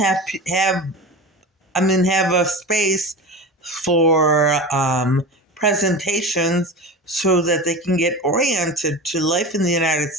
a space for presentations so that they can get oriented to life in the United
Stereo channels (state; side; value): normal; both; correlation 0.30